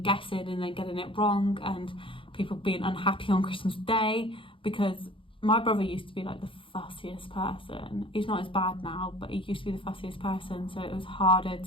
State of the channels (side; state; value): right; late; 0.25 ms